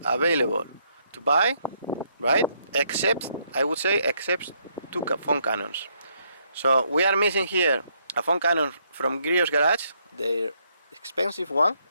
available to buy, right? Except, I would say, except two foam cannons. So we are missing here a foam cannon from Grio's Garage, the expensive one,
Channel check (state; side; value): inverted; both; correlation -0.72